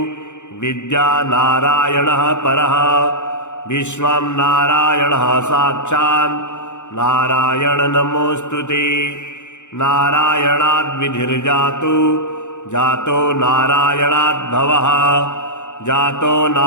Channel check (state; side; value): late; right; 0.84 ms